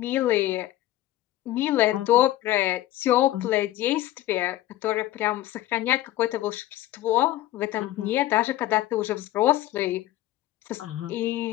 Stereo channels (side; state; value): right; quieter; 15.1 dB